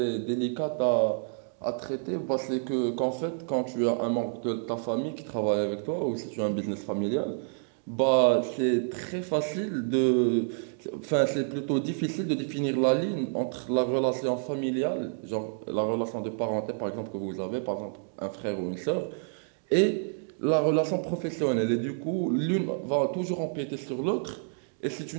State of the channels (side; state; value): left; silent; digital silence